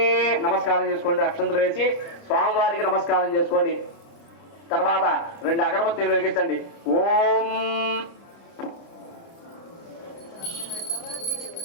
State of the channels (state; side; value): late; right; 30 ms